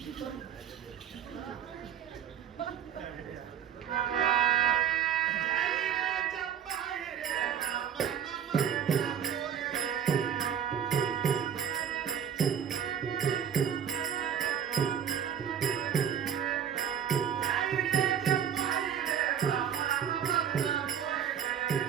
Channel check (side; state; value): left; quieter; 8.5 dB